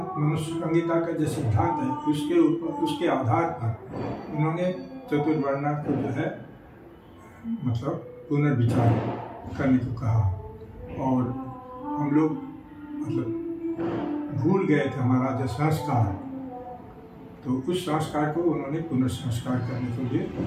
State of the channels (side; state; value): both; identical; correlation 1.00